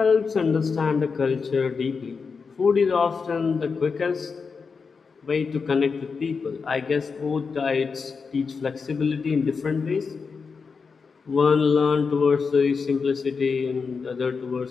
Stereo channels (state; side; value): quieter; right; 5.2 dB